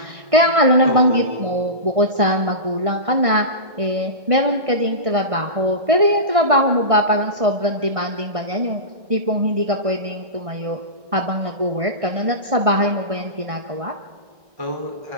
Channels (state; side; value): late; left; 1.6 ms